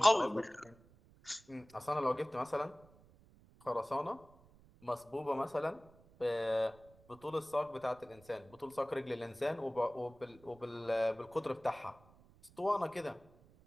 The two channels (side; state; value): right; noise; rumble, 26 dB below the sound